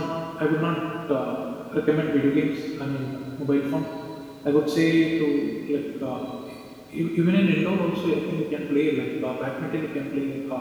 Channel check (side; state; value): both; identical; correlation 1.00